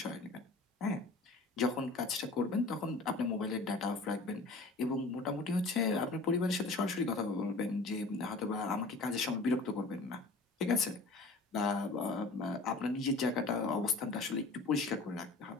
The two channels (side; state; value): right; quieter; 3.4 dB